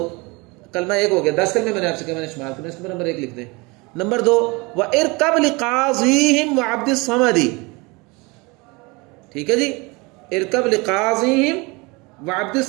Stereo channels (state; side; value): quieter; left; 26.3 dB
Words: کلمہ 1 ہو گیا. 10 کلمے میں نے آپ سے کہا، میں نے شمار کرنا، اس میں نمبر 1 لکھ دیں. نمبر 2 وَإِرْكَبْ لِقَاضِيهِمْ وَعَبْدِ الصَّمَدِ. ٹھیک ہے جی. ارکب لقاضیہم وعبد